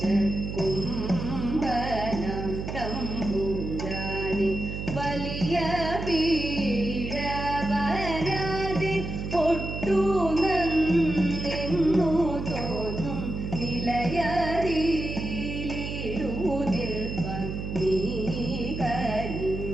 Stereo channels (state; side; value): noise; right; hum, 5 dB below the sound